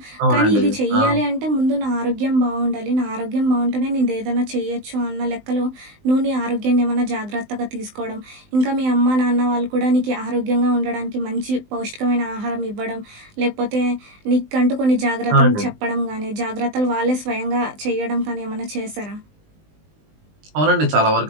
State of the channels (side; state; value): left; late; 19 ms